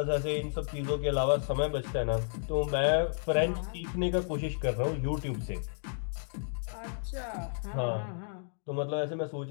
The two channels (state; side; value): silent; right; digital silence